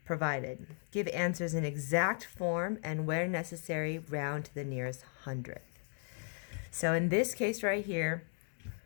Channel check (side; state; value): right; silent; 54 dB below the other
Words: provided. Give answers in exact form and where necessary, round to the nearest hundredth. So in this case right here,